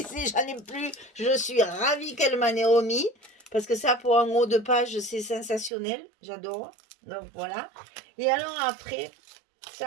J'en ai plus. Je suis ravie qu'elle m'en ait remis. Parce que ça, pour un haut de page, c'est sensationnel. J'adore. Donc, voilà. Et alors, après,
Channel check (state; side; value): drops out; left; at 5.7 s